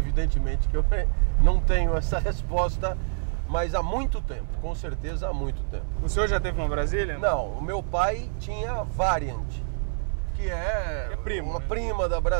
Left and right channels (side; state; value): left; silent; digital silence